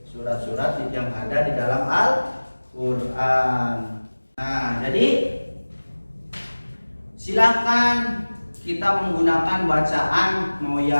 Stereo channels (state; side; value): inverted; both; correlation -1.00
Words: surat-surat yang ada di dalam Al-Quran. Nah, jadi silakan kita menggunakan bacaan mau